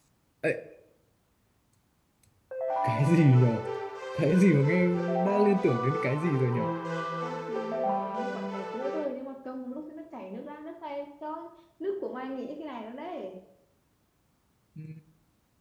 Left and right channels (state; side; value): identical; both; correlation 1.00